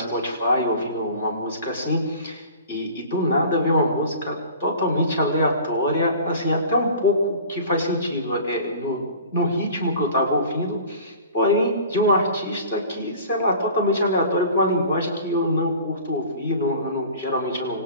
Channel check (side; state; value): both; inverted; correlation -0.43